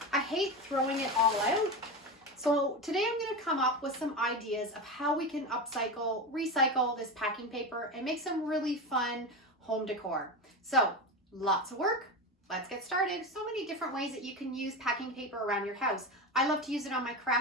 I hate throwing it all out. So today I'm going to come up with some ideas of how we can upcycle, recycle this packing paper and make some really fun home decor. So lots of work. Let's get started. So many different ways that you can use packing paper around your house. I love to use it on my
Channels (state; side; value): normal; both; correlation 0.21